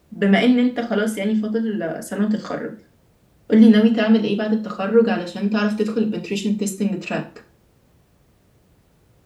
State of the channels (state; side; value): identical; both; correlation 1.00